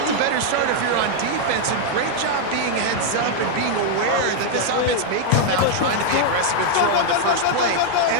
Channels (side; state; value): both; different; correlation 0.00